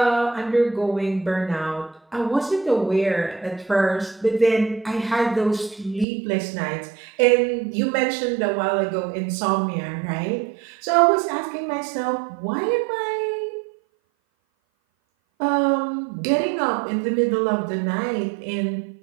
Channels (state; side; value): drops out; left; at 6.1 s